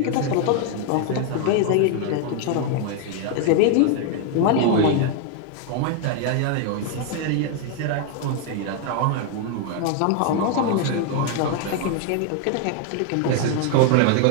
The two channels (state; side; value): different; both; correlation 0.00